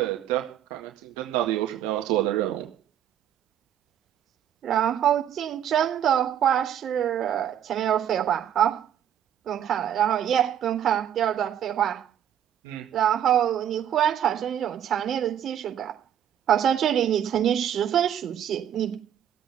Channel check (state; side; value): quieter; left; 9.9 dB